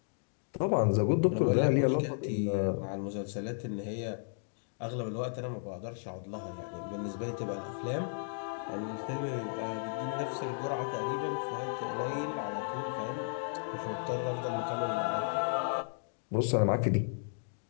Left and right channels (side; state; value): right; silent; digital silence